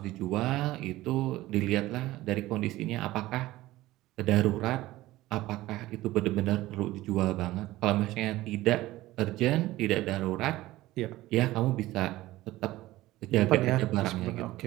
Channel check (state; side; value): quieter; left; 17.0 dB